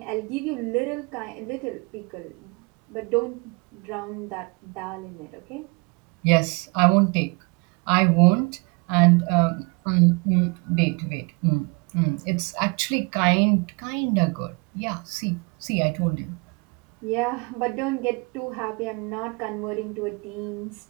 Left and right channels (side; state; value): left; quieter; 30.5 dB